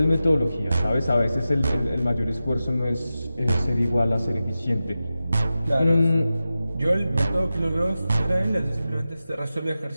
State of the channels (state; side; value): inverted; both; correlation -0.93